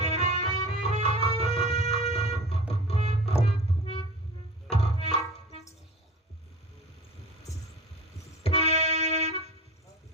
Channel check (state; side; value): normal; both; correlation 0.36